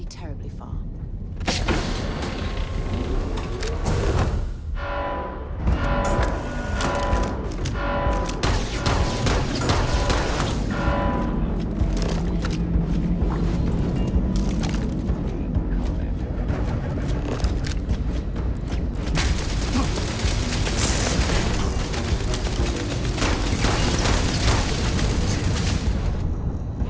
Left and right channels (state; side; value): identical; both; correlation 1.00